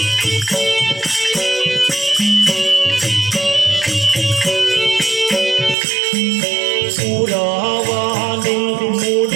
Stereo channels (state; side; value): drops out; left; at 5.8 s